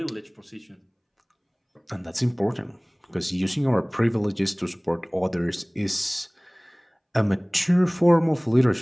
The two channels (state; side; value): identical; both; correlation 1.00